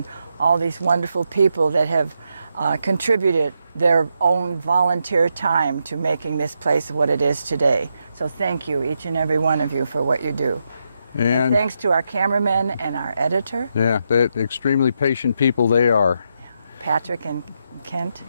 all these wonderful people that have contributed their own volunteer time to making this place what it is today. So thank you, each and every one of you, for what you do. And thanks to our cameraman and our editor, Yeah, they're extremely patient people they are. Patrick and Kent.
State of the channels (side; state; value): both; inverted; correlation -0.82